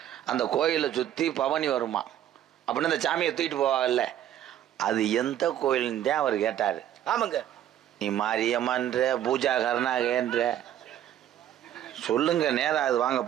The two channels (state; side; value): quieter; left; 11.3 dB